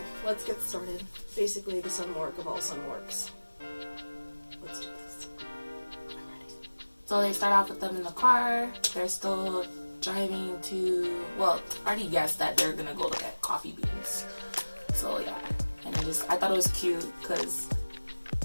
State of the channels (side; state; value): both; inverted; correlation -1.00